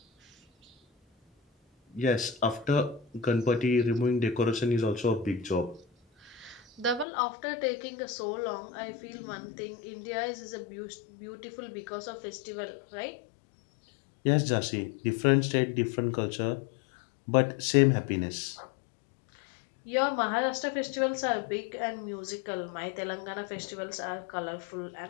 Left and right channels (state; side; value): drops out; right; at 7.1 s